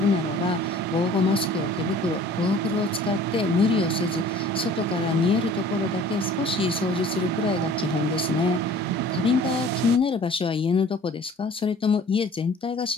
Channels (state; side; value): normal; both; correlation 0.49